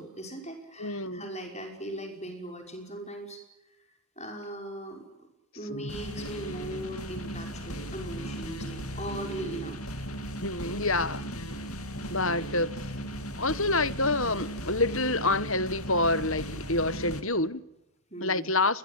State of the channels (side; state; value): both; normal; correlation -0.12